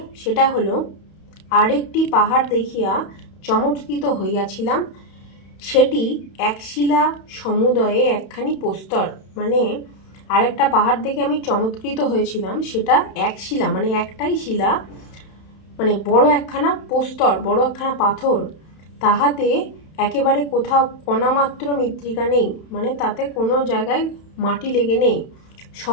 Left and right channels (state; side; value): late; right; 31 ms